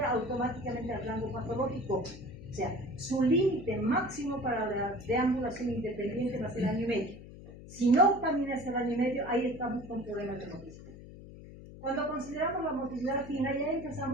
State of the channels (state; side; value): noise; left; hum, 16 dB below the sound